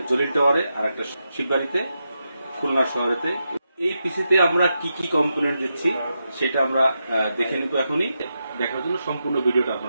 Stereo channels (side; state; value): both; inverted; correlation -0.86